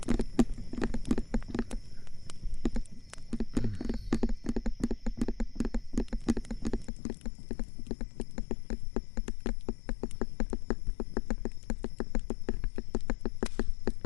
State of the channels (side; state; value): right; drops out; at 6.9 s